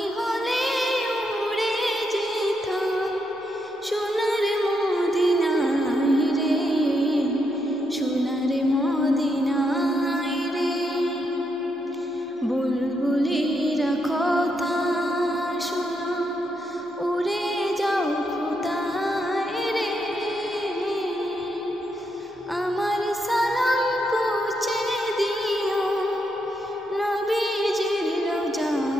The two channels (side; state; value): both; normal; correlation 0.80